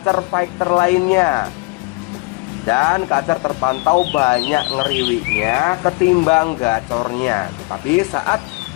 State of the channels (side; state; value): right; quieter; 27.6 dB